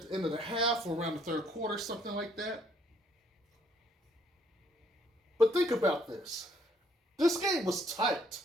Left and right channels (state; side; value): normal; both; correlation 0.66